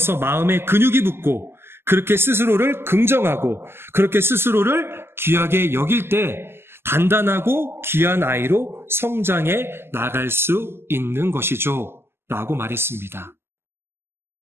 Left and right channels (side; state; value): left; late; 0.12 ms